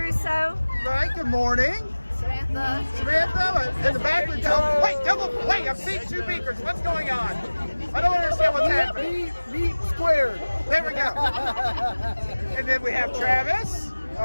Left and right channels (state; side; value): inverted; both; correlation -1.00